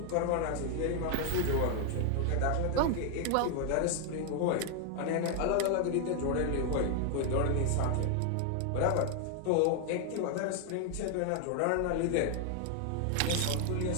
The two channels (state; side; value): different; both; correlation 0.00